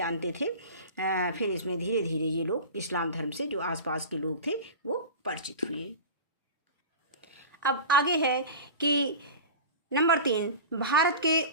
थे। फिर इसमें धीरे धीरे ये लोग इस्लाम धर्म से जो आसपास के लोग थे वो परिचित हुए। अब आगे है कि नंबर 3, भारत के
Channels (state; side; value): inverted; both; correlation -0.32